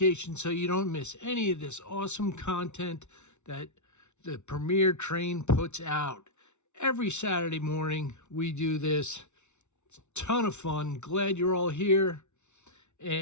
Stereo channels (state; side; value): late; right; 0.82 ms